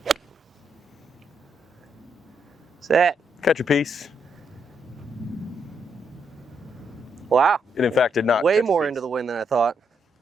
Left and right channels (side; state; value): both; normal; correlation 0.78